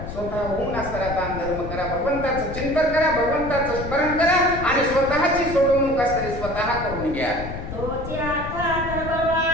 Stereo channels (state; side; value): noise; left; rumble, 8 dB below the sound